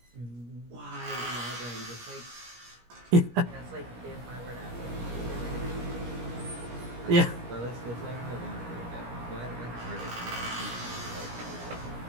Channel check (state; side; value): late; left; 17 ms